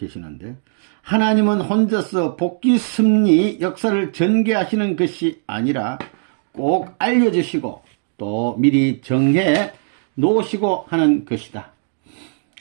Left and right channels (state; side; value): silent; left; digital silence